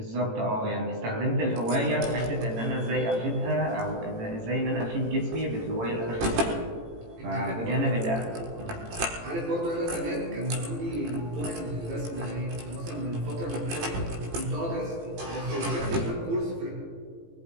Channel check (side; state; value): left; late; 18 ms